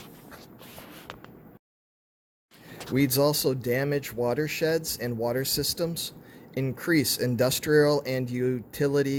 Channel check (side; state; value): both; identical; correlation 1.00